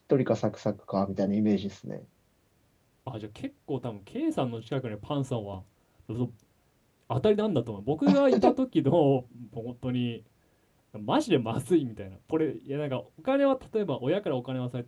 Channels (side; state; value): both; identical; correlation 1.00